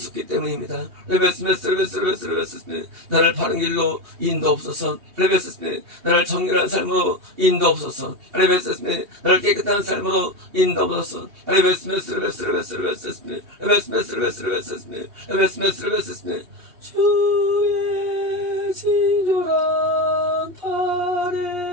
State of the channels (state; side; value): late; left; 2.8 ms